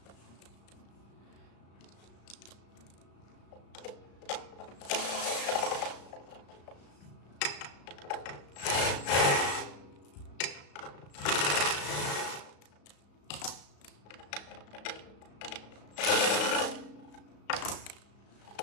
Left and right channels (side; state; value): right; late; 35 ms